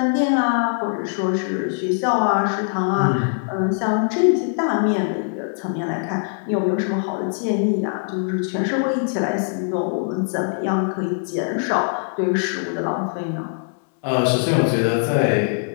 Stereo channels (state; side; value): silent; right; digital silence